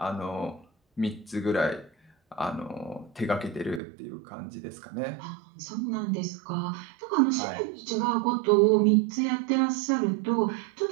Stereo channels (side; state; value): left; drops out; at 3.8 s